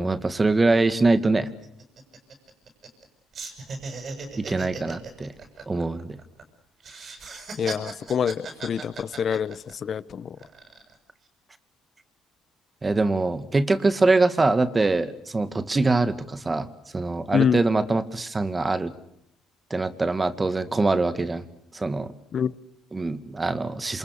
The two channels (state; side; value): normal; both; correlation 0.91